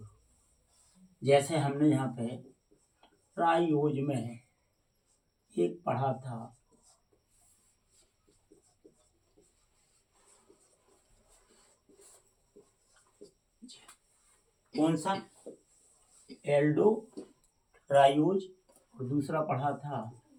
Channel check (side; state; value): both; identical; correlation 1.00